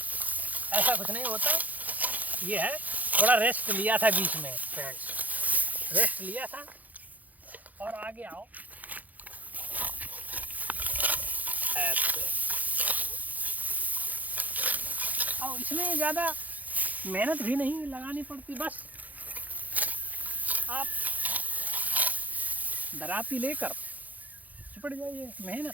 ऐसा कुछ नहीं होता। ये है थोड़ा रेस्ट लिया था बीच में फ्रेंड्स, रेस्ट लिया था। और आगे आओ ऐसे। और इसमें ज़्यादा मेहनत भी नहीं लगानी पड़ती, बस आप दराती लेकर चिपट जाइए,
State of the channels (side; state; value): left; late; 0.080 ms